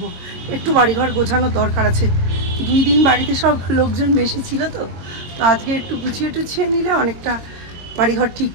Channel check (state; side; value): late; left; 22 ms